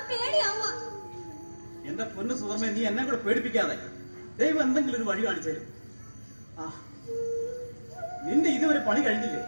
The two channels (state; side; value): inverted; both; correlation -1.00